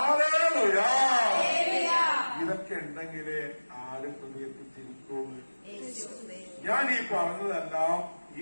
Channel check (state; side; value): inverted; both; correlation -1.00